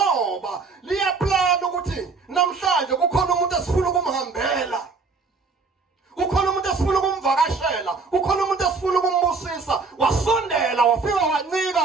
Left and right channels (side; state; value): left; quieter; 4.4 dB